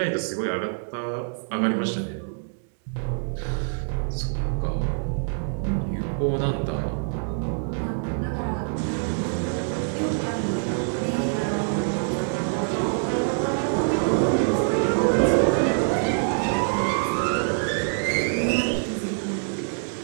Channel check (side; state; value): left; silent; 62 dB below the other